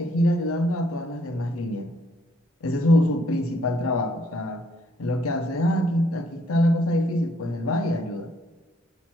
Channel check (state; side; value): normal; both; correlation 0.68